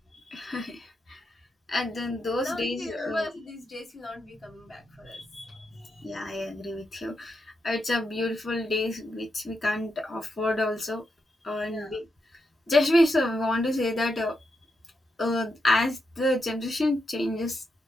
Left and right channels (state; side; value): normal; both; correlation 0.84